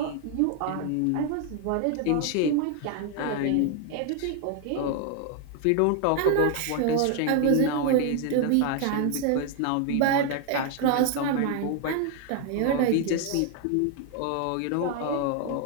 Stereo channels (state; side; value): different; both; correlation 0.00